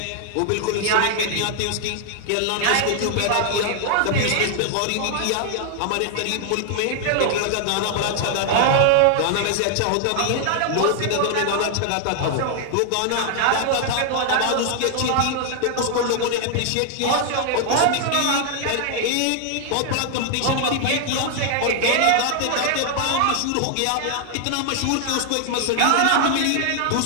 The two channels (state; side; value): different; both; correlation 0.00